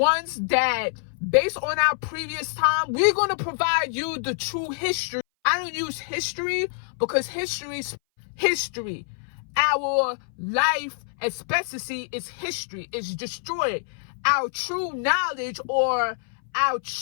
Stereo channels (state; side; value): silent; right; 59 dB below the other